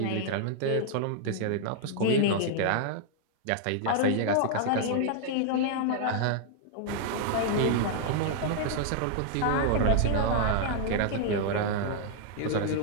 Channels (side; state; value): both; different; correlation 0.00